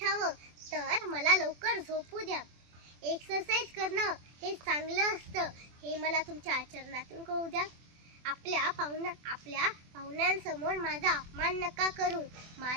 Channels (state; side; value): late; left; 24 ms